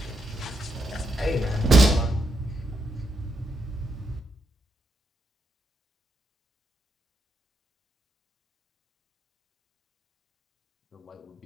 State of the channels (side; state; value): both; normal; correlation 0.81